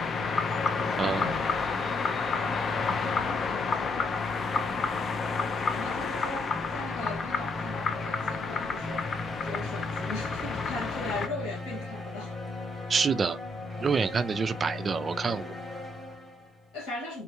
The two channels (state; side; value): normal; both; correlation 0.74